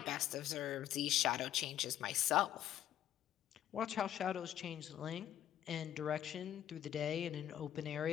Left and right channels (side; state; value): right; quieter; 11.4 dB